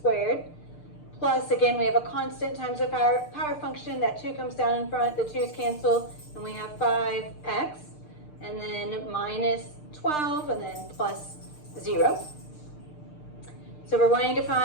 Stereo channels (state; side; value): late; right; 6.7 ms